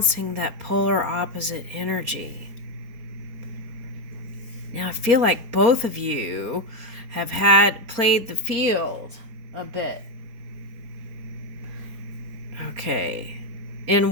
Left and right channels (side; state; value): left; late; 4.3 ms